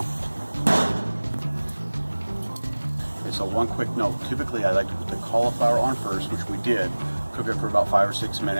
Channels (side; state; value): both; inverted; correlation -1.00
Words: Okay, so one quick note. Typically I like to put the cauliflower on first, which we did. Cook it for about 5 or 6